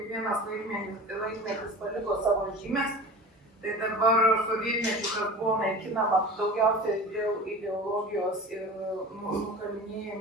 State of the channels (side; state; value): both; normal; correlation 0.37